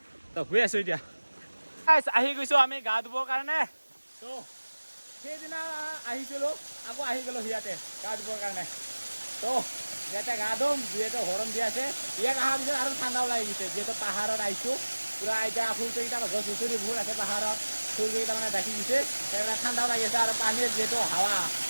তো গৈ আছোঁ এতিয়া আহি গৈছোঁ আমি গা ধুবৰ কাৰণে তো সেইদিনা আহিছিলোঁ আকৌ আহি গ'লোঁ ইয়াতে গা ধুবৰ কাৰণে তো ইয়াতে গা ধুম যিহেতু গৰম দি আছে ইয়াত অহাৰ পিছত আৰু ঠাণ্ডাও লাগি গৈছে যিহেতু পাহাৰত আহিছোঁ পুৰা এতিয়া ফুলকেইটা গছ গছনিবোৰ আছে পাহাৰত ফুলকেইটা মানে ঢাকি দিছে সেইকাৰণে ঠাণ্ডাও লাগি আছে আৰু পানীৰ যিহেতু হাৱা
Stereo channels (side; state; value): both; inverted; correlation -1.00